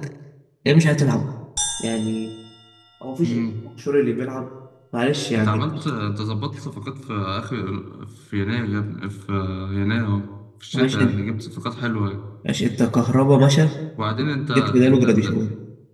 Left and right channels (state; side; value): identical; both; correlation 1.00